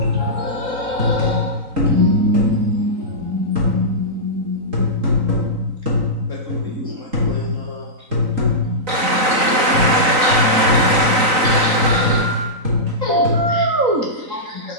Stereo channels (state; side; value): late; left; 3.9 ms